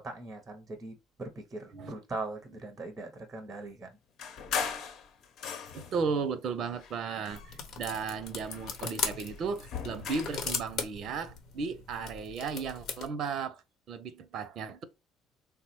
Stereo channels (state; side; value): normal; both; correlation 0.51